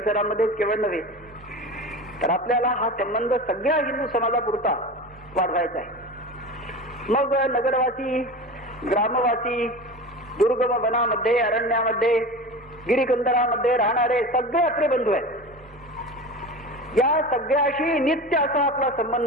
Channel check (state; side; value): normal; both; correlation 0.30